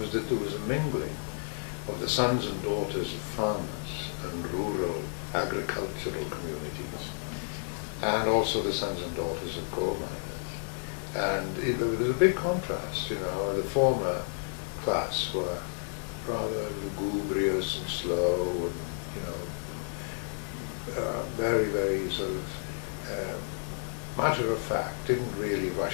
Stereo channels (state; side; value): silent; right; digital silence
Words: that there was a mingling of the sons and daughters of farmers and rural agricultural communities, and also the sons and daughters of coal miners. And there was a big contrast, the former class were rather lugubrious and slow and, very, very sort of matter of fact, didn't really